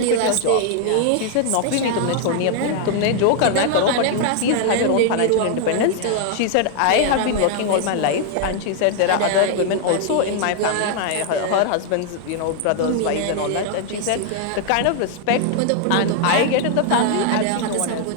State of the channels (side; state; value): both; different; correlation -0.01